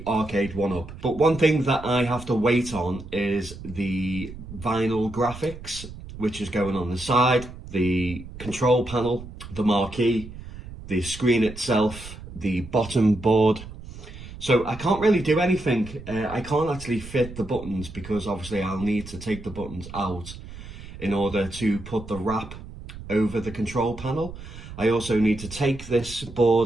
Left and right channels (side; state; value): right; noise; rumble, 13 dB below the sound